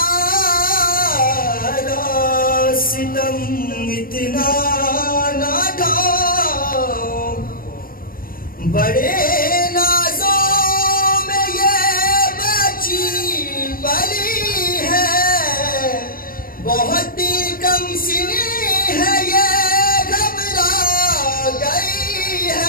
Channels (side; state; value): right; late; 0.41 ms